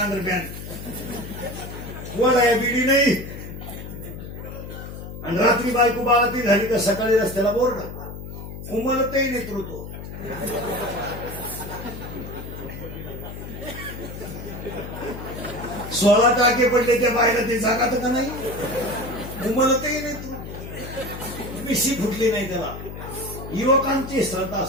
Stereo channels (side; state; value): left; noise; hum, 10 dB below the sound